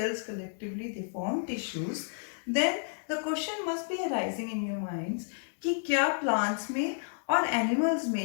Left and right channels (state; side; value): silent; right; digital silence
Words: collectively they form tissues, then the question must be arising in your minds कि क्या plants में और animals